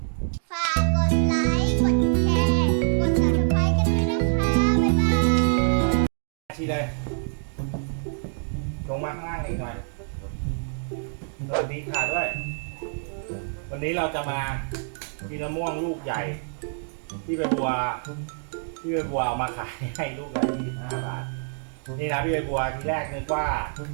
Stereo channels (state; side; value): silent; left; digital silence